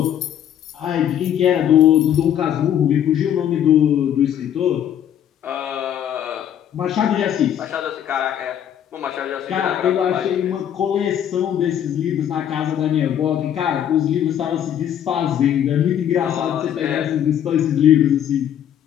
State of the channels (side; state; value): right; quieter; 9.9 dB